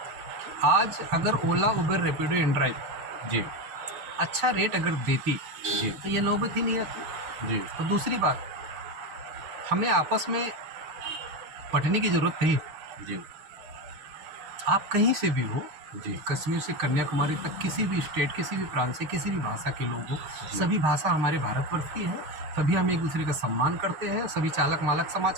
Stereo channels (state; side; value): late; left; 6.6 ms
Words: आज अगर ओला उबर रैपिडो इनड्राइव जी अच्छा रेट अगर देती जी तो ये नौबत ही नहीं आती। जी और दूसरी बात, हमें आपस में पढ़ने की ज़रूरत नहीं। जी आप कहीं से भी हो, जी कश्मीर से कन्याकुमारी तक, किसी भी स्टेट, किसी भी प्रांत से, किसी भी भाषा के लोग हो, सभी भाषा हमारे भारतवर्ष की है। सभी हम एक दूसरे का सम्मान करते हैं, सभी चालक मालक समाज